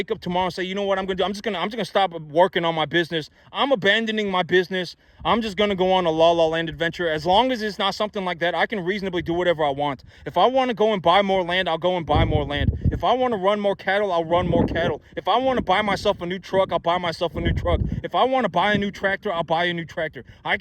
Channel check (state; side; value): identical; both; correlation 1.00